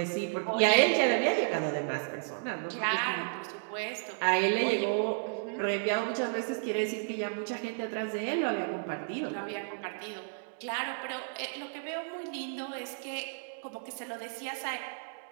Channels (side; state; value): left; silent; digital silence